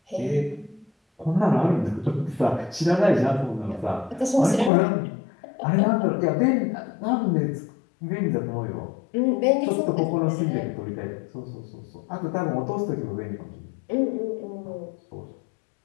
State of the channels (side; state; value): right; drops out; at 4.7 s